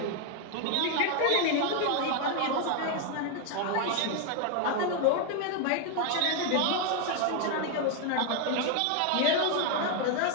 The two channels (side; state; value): both; different; correlation 0.01